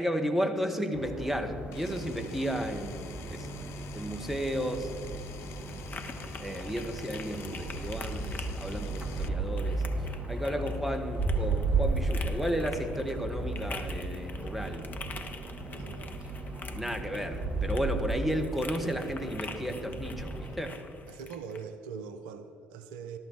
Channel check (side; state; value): both; normal; correlation 0.73